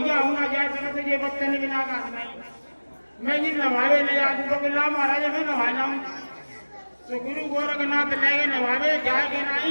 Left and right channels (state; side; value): inverted; both; correlation -1.00